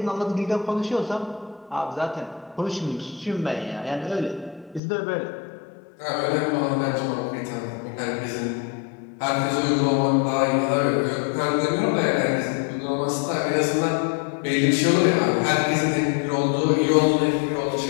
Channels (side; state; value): right; drops out; at 4.8 s